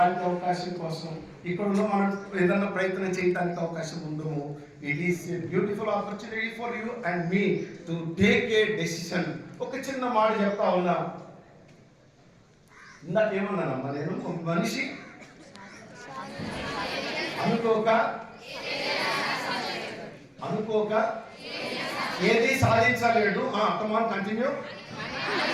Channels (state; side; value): identical; both; correlation 1.00